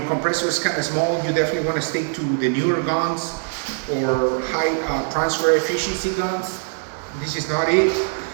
compressor is kind of small, you definitely want to stick to the newer guns or high transfer efficiency guns. This is not it.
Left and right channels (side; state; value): left; silent; 59 dB below the other